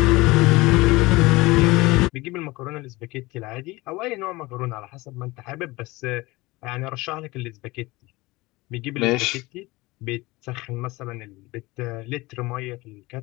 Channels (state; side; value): quieter; right; 21.5 dB